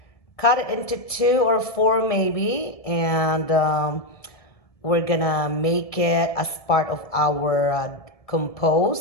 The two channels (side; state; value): right; late; 1.7 ms